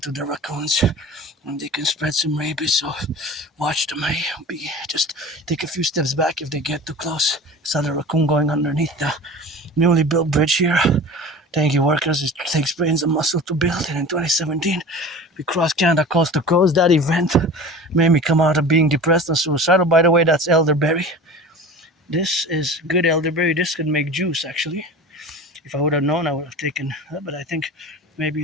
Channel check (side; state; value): both; normal; correlation 0.36